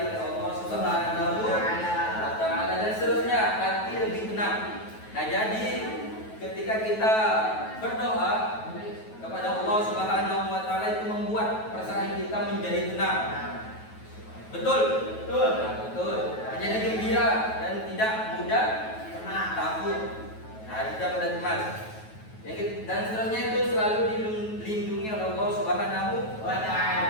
oleh Allah Subhanahu wa Ta'ala, dan seterusnya hati lebih tenang. Nah, jadi ketika kita berdoa kepada Allah Subhanahu wa Ta'ala itu membuat perasaan kita menjadi tenang. Betul? Betul. Menjadi gembira dan tidak mudah takut. Tidak mudah cemas. Dan seterusnya itu selalu dilindungi oleh Allah Subhanahu wa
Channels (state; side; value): late; right; 9.3 ms